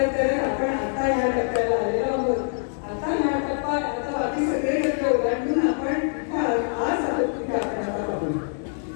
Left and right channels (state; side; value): silent; right; digital silence